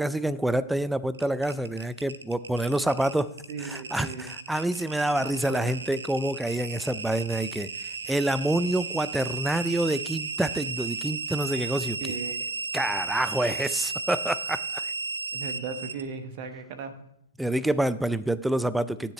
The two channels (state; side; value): normal; both; correlation 0.68